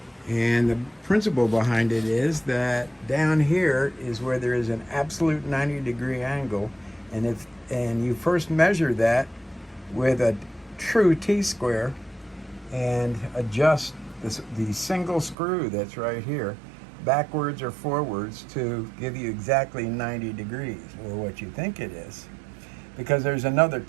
And the principle behind it is that down here is where there is an absolute 90-degree angle, and you first measure that with a true T-square and adjust the single screw that's right here backwards or forwards to give you exactly 90 degrees, or what you think it is, because there's another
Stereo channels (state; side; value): drops out; left; at 15.4 s